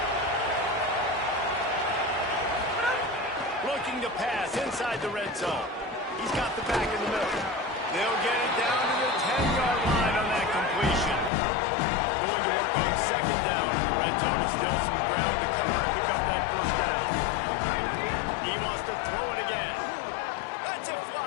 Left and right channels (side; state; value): right; drops out; at 11.3 s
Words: Looking to pass inside the red zone. He's got the back in the middle. They'll get it down to the 10-yard line on that completion. Going to work on 2nd down in the red zone. Is still some ground to cover and pick up that first down. He wants to throw it again. Lets it